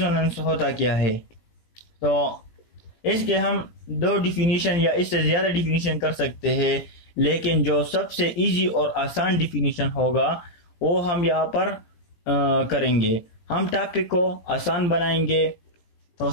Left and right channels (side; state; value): right; late; 17 ms